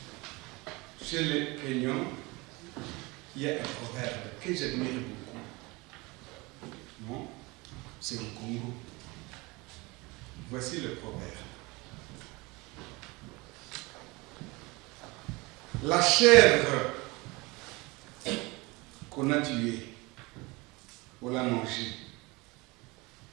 Chez les Kenyans, il y a un proverbe que j'admire beaucoup. Non, c'est au Congo. Voici le proverbe. La chèvre qu'on a tuée, on l'a mangée,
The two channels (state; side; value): quieter; left; 24.5 dB